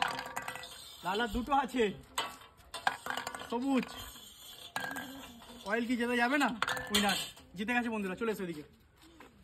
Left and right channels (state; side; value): identical; both; correlation 1.00